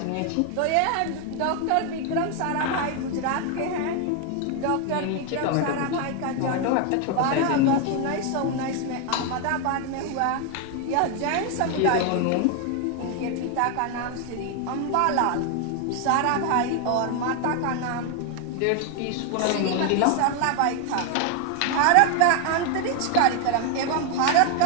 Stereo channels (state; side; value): different; both; correlation 0.00